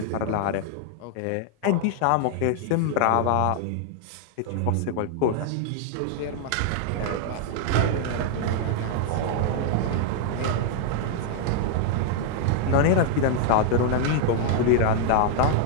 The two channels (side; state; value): both; different; correlation 0.00